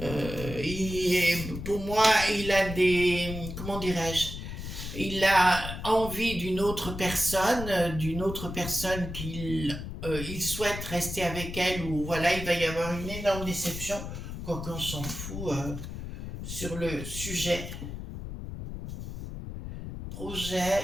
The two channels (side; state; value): left; noise; rumble, 8 dB below the sound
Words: moi, il a des, comment dirais-je, il a envie d'une autre personne qu'il il souhaite rester avec elle, ou voilà, il va y avoir une énorme déception, quoique on s'en fout sur le sujet.